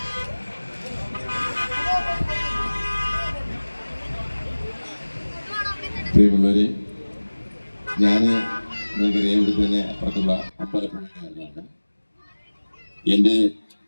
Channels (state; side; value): inverted; both; correlation -1.00